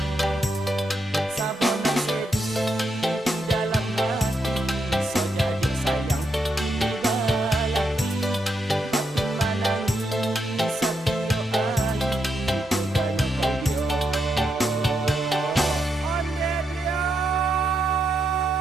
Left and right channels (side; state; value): both; normal; correlation 0.82